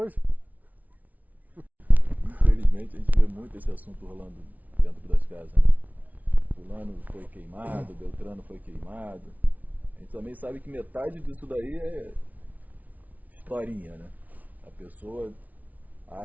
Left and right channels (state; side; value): late; left; 0.074 ms